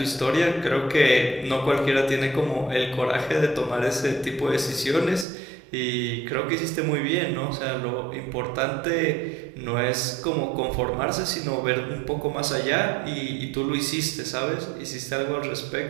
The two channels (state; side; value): drops out; left; at 5.2 s